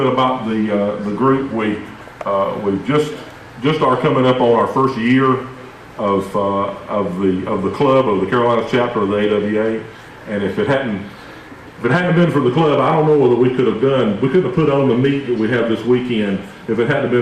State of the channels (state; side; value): identical; both; correlation 1.00